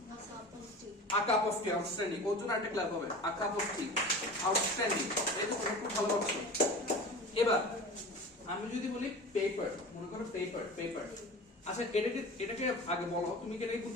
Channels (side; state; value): both; normal; correlation 0.36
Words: A cup of tea, outstanding. ওর জন্য একটা ক্ল্যাপ হবে। A cup of tea, outstanding. এই তো খুব ভালো করছো। এবার আমি যদি বলি পেপার, মনে করো পেপার, পেপার। আচ্ছা, এটাকে আগে বলো, তুমি কি এটাকে